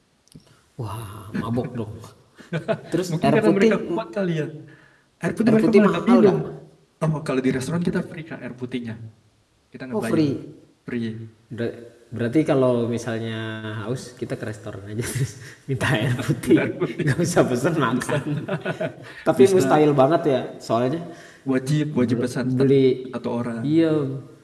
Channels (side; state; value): both; identical; correlation 1.00